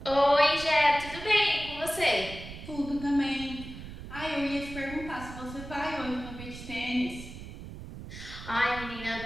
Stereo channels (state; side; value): noise; right; rumble, 12 dB below the sound